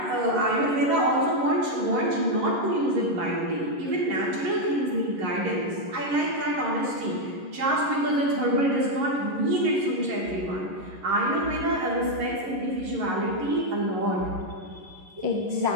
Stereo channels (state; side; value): late; left; 11 ms